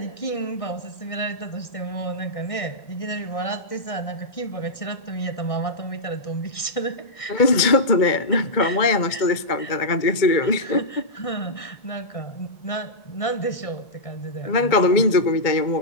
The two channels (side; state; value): right; late; 2.2 ms